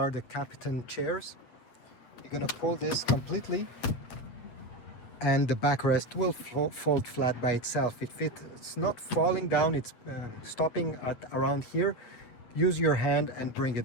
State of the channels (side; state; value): right; late; 8.3 ms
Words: the captain chairs. You're gonna pull this completely and the backrest will fold flat by itself. If it's not falling down, it's stopping at around here, use your hand and bring